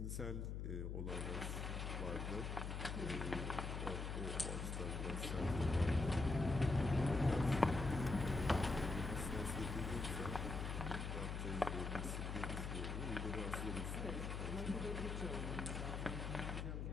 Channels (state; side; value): noise; left; hum, 3 dB below the sound